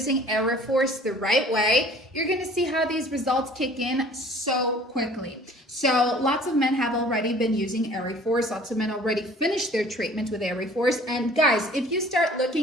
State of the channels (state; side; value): normal; both; correlation 0.50